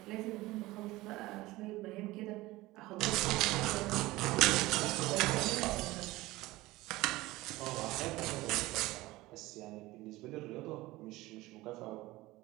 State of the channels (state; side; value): quieter; left; 19.0 dB